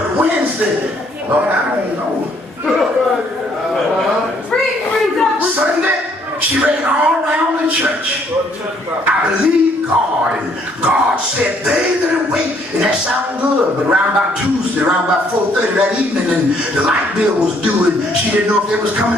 Wednesday, Lord, I don't know. Sunday, she ran all around the church. I believe God, and God said, they that wait, and that sounded good, but around about Tuesday, around about 4:30 that evening, and the light bill was due, and she didn't know if they was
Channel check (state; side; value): normal; both; correlation 0.66